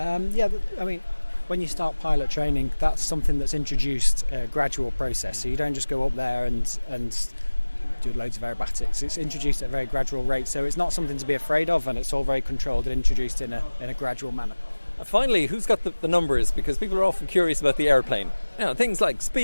When you start pilot training, that's something that's introduced a gradual process. So you don't just go up there and do loads of aerobatics. It's introduced at a very gradual rate, so it's not something to be afraid of, and it's all very controlled and introduced in a gradual manner. Finally, who's got the numbers? Because people are often curious about the airplane. Things like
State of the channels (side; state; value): both; inverted; correlation -1.00